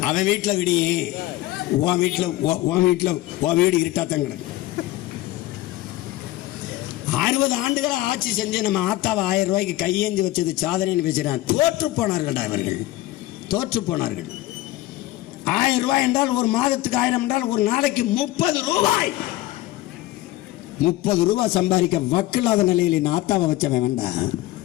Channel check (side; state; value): right; quieter; 16.5 dB